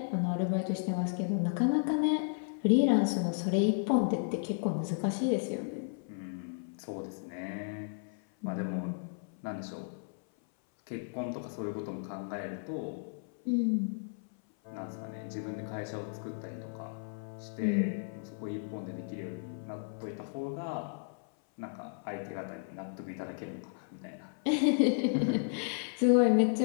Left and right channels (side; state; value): right; silent; 55 dB below the other